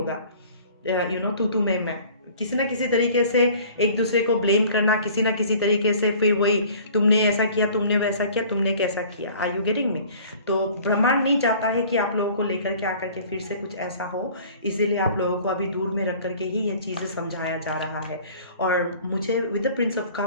तू मैं, किसी ना किसी तरीके से एक दूसरे को ब्लेम करना, किसी ना किसी तरीके से फिर वही, तुमने ऐसा किया, तुमने वैसा किया, तुमने कैसा किया। Are you getting me? तो ब्रह्मांड नहीं चाहता है कि आप लोगों को लेकर के आकर के फिर से कुछ ऐसा हो, इसीलिए आप लोगों को अभी दूर में रख करके ही ये चीज़ें समझाया जा रहा है। और मुझे with the Prince of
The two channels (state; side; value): inverted; both; correlation -0.49